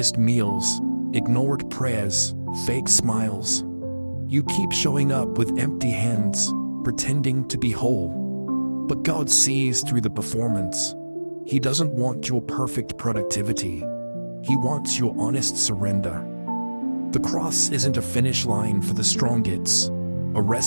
meals, ignored prayers, fake smiles. You keep showing up with empty hands, pretending to be whole. But God sees through the performance. He doesn't want your perfect productivity. He wants your honest surrender. The cross isn't a finish line for the strong, it's a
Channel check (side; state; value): both; inverted; correlation -1.00